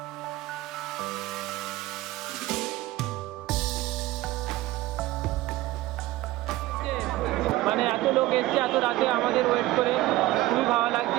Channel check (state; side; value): quieter; left; 17.4 dB